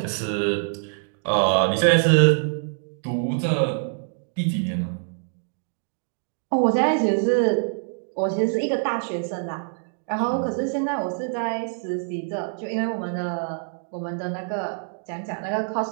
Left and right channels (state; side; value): silent; left; digital silence